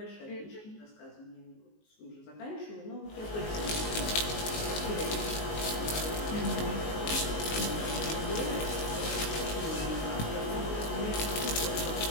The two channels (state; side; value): late; right; 19 ms